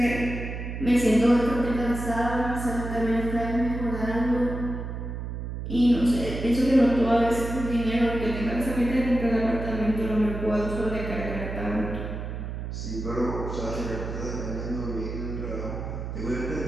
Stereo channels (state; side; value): noise; right; hum, 6 dB below the sound